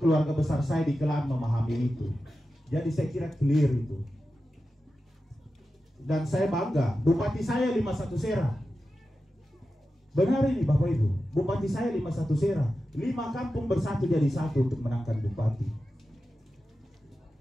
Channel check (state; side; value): normal; both; correlation 0.92